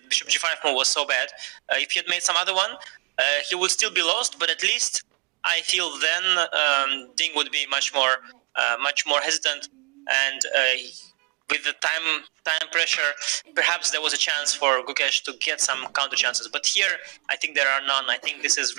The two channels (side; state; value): left; quieter; 36.5 dB